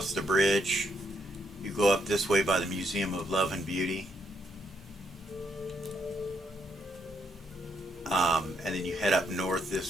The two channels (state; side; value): normal; both; correlation 0.76